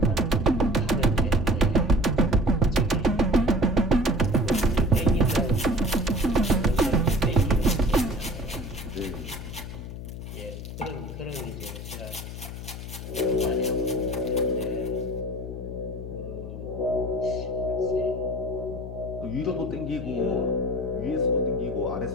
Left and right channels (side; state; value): left; noise; hum, 9 dB below the sound